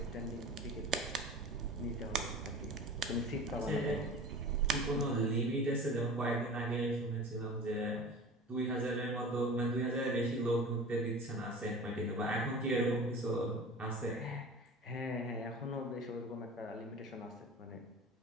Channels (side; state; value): both; normal; correlation 0.37